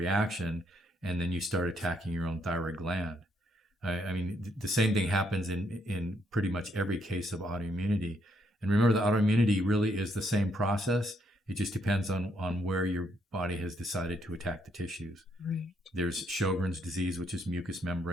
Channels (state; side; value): normal; both; correlation 0.73